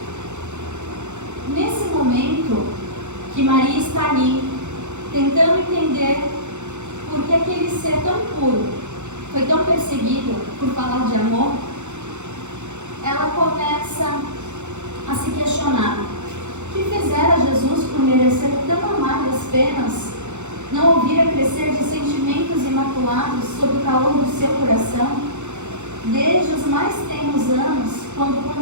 Nesse momento que Maria está ali, tentando entender por que aquele ser tão foi tão perseguida por falar de amor, ela começa a se questionar: o que fizera Jesus por merecer tão amargas penas? Não ouvira crescer de sentimentos imaculados sob o calor do seu coração? Desde os mais tenros anos, quando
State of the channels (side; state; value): left; late; 0.83 ms